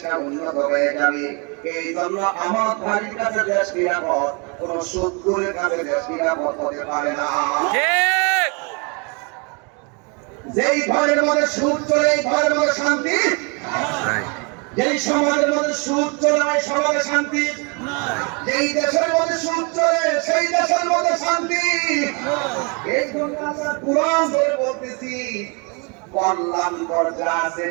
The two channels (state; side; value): quieter; left; 32.4 dB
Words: উন্নত হয়ে যাবে। এই জন্য আমার ভাইয়ের কাছে দেশ নিরাপদ, কোন শত্রুর কাছে দেশ নিরাপদ হতে পারে না। যেই ঘরের মধ্যে সুদ চলে, এই ঘরের মধ্যে শান্তি নাই। যেই সমাজের মধ্যে সুদ চলে, ওই সমাজে শান্তি নাই। যেই দেশের মধ্যে সুদ চলে, সেই দেশের মধ্যে শান্তি নাই। এই জন্য আমরা কোরআন ধরে বলতেছি, কল্যাণকর যা আছে,